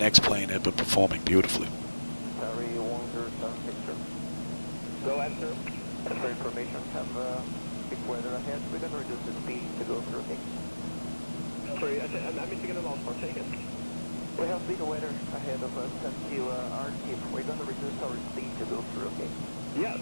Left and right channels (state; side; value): inverted; both; correlation -1.00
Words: X-Plane have been performing beautifully. Go ahead, sir. And for information, have big weather ahead. We're going to reduce the speed to go through, okay? Sorry, I'm missing the last part, take it. We have big weather ahead of us until our tip. We're going to reduce our speed to go through, okay? Yeah,